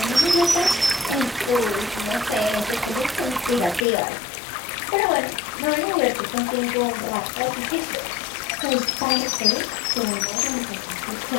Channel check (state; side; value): drops out; right; at 3.9 s